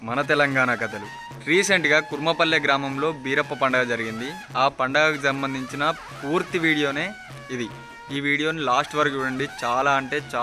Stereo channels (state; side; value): identical; both; correlation 1.00